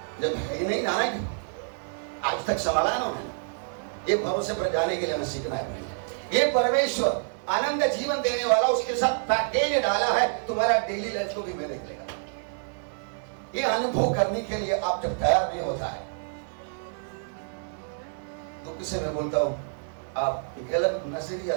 जब है ही नहीं जाना क्यों, आज तक संभाला है ना उन्होंने। ये भरोसे पर जाने के लिए हमें सीखना है। ये परमेश्वर आनंद जीवन देने वाला, उसके साथ पैकेज डाला है, तुम्हारा डेली लाइफ को भी मैं देख लेगा। ये अनुभव करने के लिए आप जब तैयार नहीं होता है तो किसे मैं बोलता हूं आप गलत नजरिया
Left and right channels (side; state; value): left; silent; 60 dB below the other